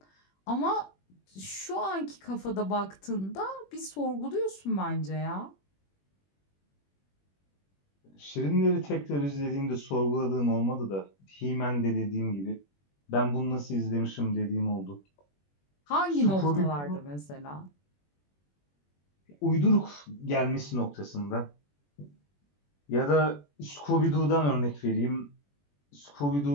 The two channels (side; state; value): right; late; 21 ms